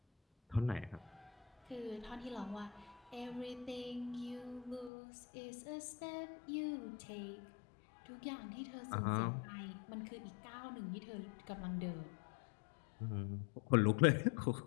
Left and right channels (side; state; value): right; drops out; at 4.9 s